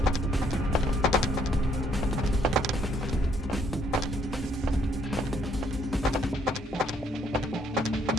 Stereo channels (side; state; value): both; normal; correlation 0.67